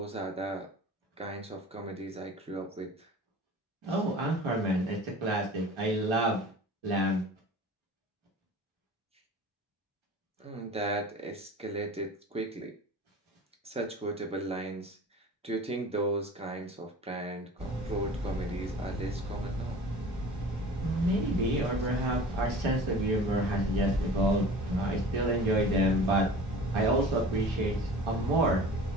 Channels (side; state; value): both; normal; correlation 0.41